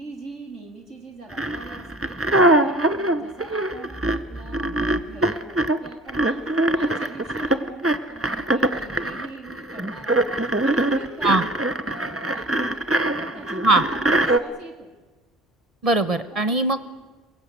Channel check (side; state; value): both; normal; correlation 0.44